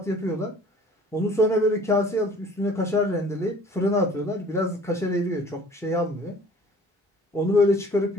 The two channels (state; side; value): normal; both; correlation 0.51